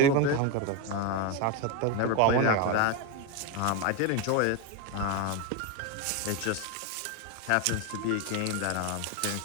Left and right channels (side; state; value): both; different; correlation 0.02